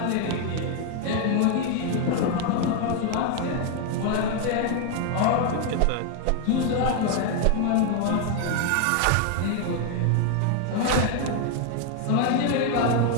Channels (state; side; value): different; both; correlation 0.00